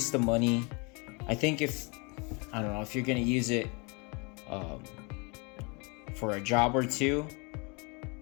of money. I think if you're gonna use it for a job or two,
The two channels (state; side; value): quieter; right; 30.8 dB